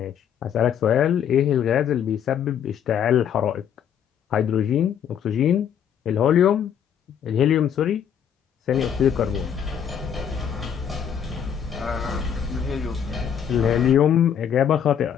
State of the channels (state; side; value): quieter; right; 8.6 dB